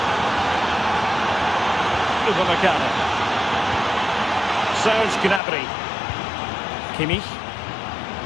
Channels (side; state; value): right; drops out; at 5.4 s